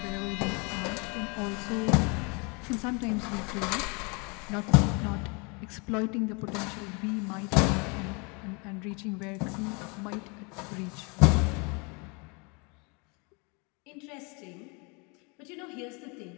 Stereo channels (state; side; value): quieter; right; 31.4 dB